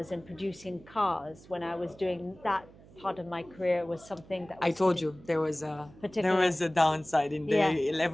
and producing cars when I was doing that part of my career was something that was I told you there particular. was a downside in the Yeah.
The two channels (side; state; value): right; noise; hum, 23 dB below the sound